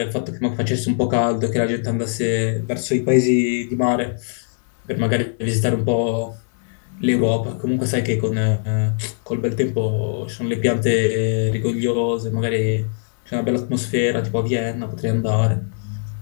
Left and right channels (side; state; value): right; silent; 65 dB below the other